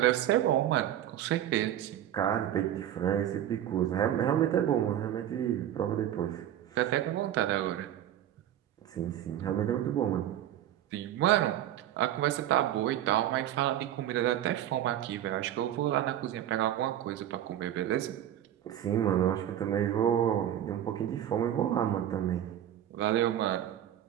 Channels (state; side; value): quieter; left; 11.4 dB